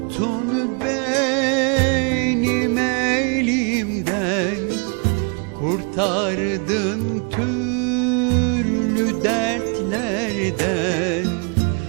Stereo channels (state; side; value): quieter; left; 36.1 dB